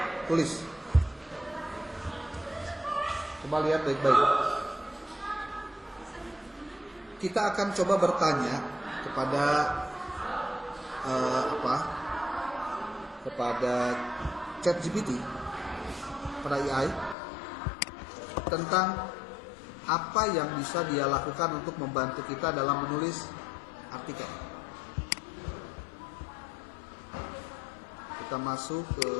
Coba lihat baik-baik. Kita akan coba bertanya kepada kepada ChatGPT, pada AI, tentang apa yang bisa dia lakukan untuk membantu kita dalam menulis artikel. Kita masuk ke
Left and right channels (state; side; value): drops out; right; at 17.2 s